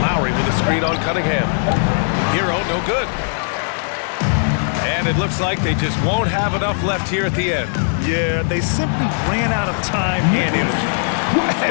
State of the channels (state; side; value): silent; right; digital silence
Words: Lowry with a screen on Cunningham. Hero no good. And it looks like they just won't have enough left here at the end. Yeah, they simply ran out of time and energy.